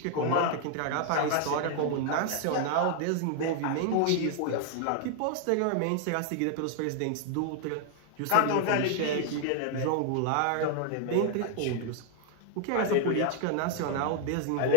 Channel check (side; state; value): both; different; correlation 0.00